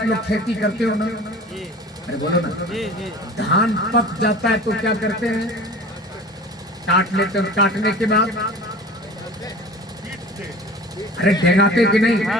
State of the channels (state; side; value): normal; both; correlation 0.40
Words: लोग खेती करते हो ना? अरे बोलो ना। जी जी धान पक जाता है तो क्या करते हैं? काट लेते हैं। काटने के बाद अरे ढेगाते कि नहीं?